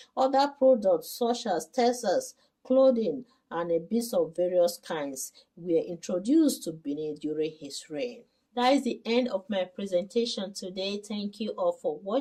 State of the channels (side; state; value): both; identical; correlation 1.00